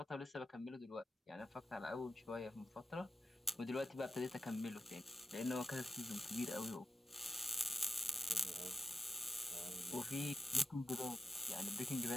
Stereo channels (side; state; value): both; normal; correlation 0.90